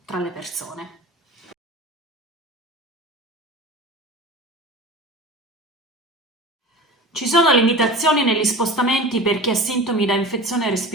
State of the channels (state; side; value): normal; both; correlation 0.34